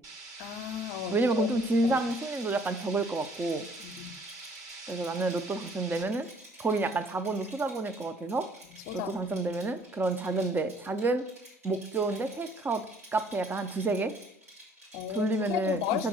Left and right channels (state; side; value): normal; both; correlation 0.59